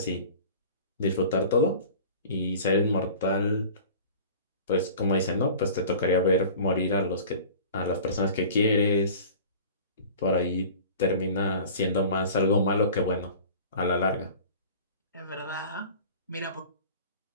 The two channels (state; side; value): inverted; both; correlation -0.41